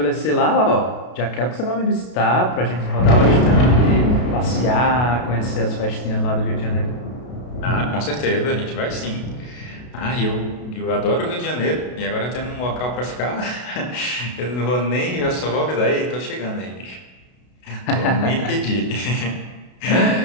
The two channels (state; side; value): late; right; 32 ms